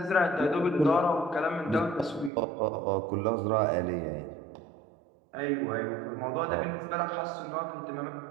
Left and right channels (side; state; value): left; drops out; at 2.3 s